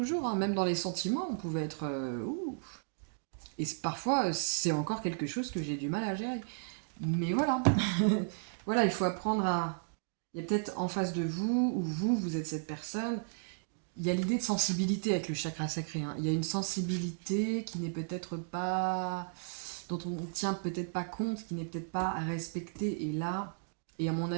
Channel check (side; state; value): left; silent; digital silence